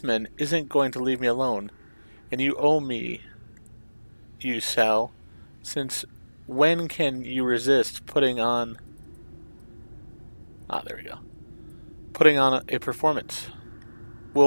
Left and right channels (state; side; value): inverted; both; correlation -1.00